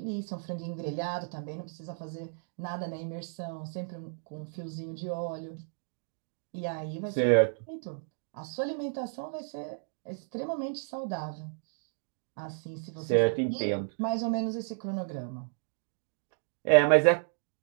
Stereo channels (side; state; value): left; silent; digital silence